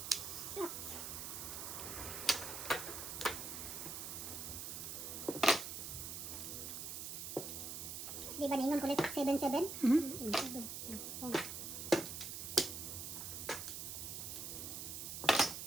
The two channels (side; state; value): right; noise; hiss, 6 dB below the sound